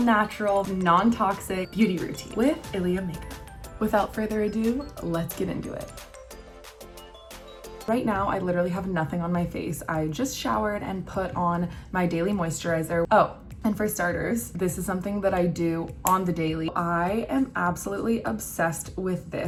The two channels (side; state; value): both; identical; correlation 1.00